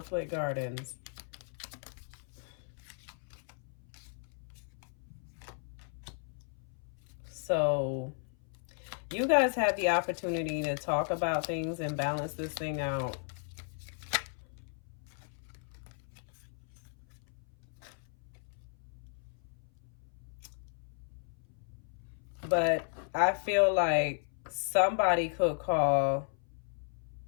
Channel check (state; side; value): silent; right; 54 dB below the other